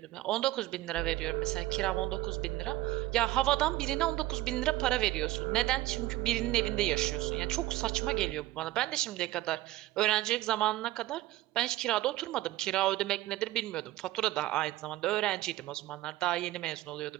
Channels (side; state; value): left; quieter; 16.7 dB